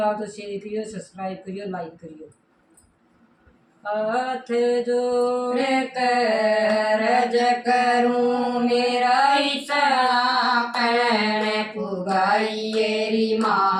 तो शेयर करियो, सब्सक्राइब करियो, लाइक करियो। हाथ जोड़ करज करूं मेरा इतना पैण पुगाइएरी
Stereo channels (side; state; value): both; identical; correlation 1.00